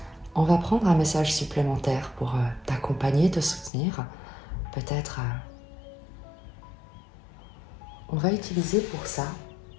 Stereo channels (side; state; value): right; drops out; at 3.7 s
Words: On va prendre un message supplémentaire pour t'accompagner, te soutenir. Peut-être on va utiliser pour ça